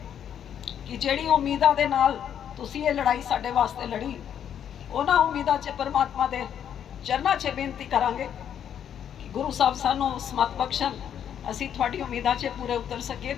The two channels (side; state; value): right; quieter; 9.2 dB